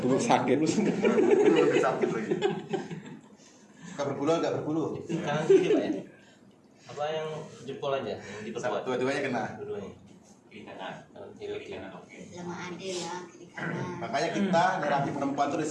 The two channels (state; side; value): identical; both; correlation 1.00